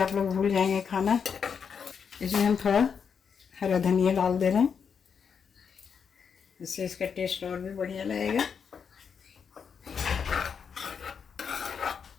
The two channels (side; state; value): right; quieter; 6.6 dB